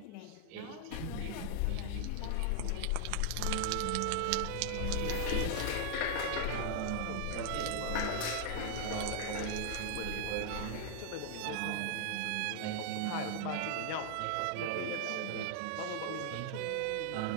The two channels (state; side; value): different; both; correlation 0.00